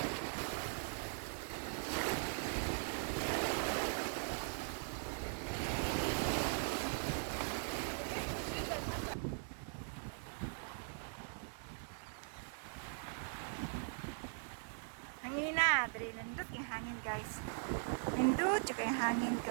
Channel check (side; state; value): left; silent; digital silence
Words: Hangin na, dali nindot yung hangin guys. Nindot yung hangin